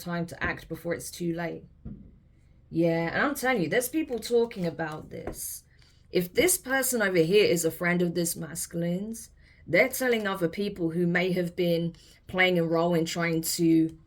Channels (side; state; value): both; identical; correlation 1.00